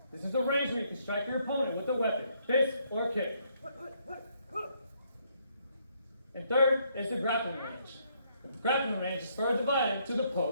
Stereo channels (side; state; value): both; inverted; correlation -0.71